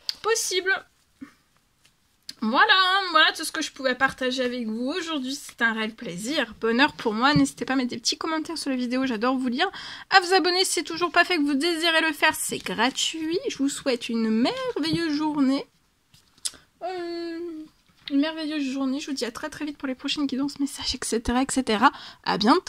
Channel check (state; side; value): identical; both; correlation 1.00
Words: Possible. Voilà tout ce que je pouvais partager avec vous aujourd'hui. C'est un réel plaisir, bonheur pour moi. N'hésitez pas à mettre des petits commentaires sur la vidéo, j'adore vous lire. À vous abonner si c'est toujours pas fait, que vous désirez le faire, c'est gratuit. Je vous souhaite une merveilleuse journée. Je vous dis à très très vite pour les prochaines guidances, messages, etc. À